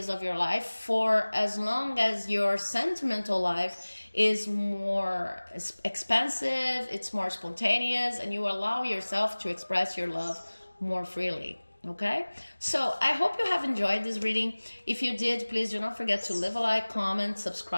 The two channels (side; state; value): both; inverted; correlation -1.00